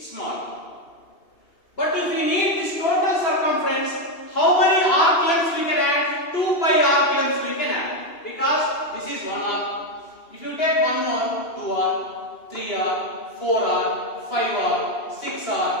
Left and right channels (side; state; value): right; late; 2.8 ms